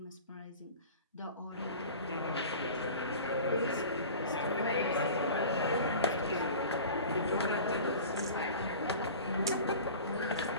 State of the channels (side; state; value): both; inverted; correlation -0.38